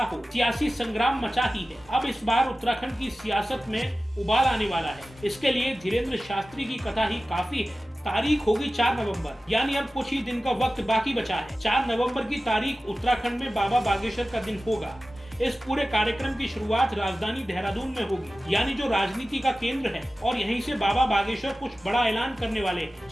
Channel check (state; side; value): normal; both; correlation 0.95